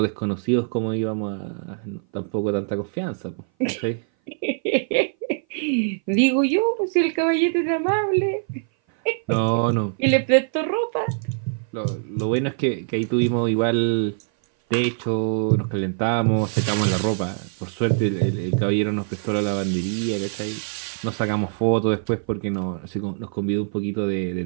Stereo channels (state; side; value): silent; left; 58 dB below the other